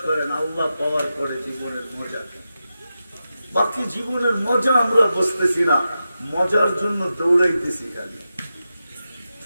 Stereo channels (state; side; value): inverted; both; correlation -0.90